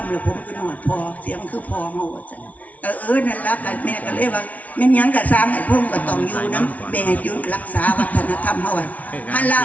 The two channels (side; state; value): right; late; 0.070 ms